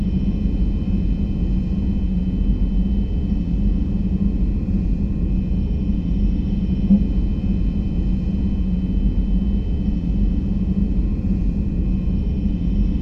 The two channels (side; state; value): both; identical; correlation 1.00